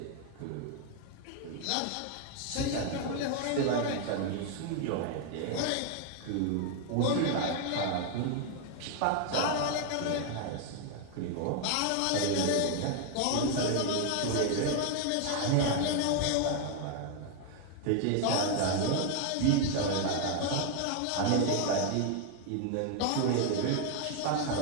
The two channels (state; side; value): different; both; correlation 0.00